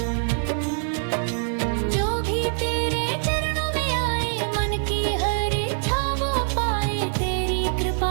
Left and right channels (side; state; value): left; silent; digital silence